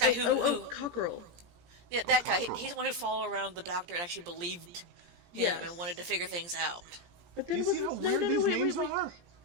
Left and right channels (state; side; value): late; left; 17 ms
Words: who Cockerel. Yeah, that guy. He's the one who followed around the doctor and actually believed him and wanted to figure things out. But then wait.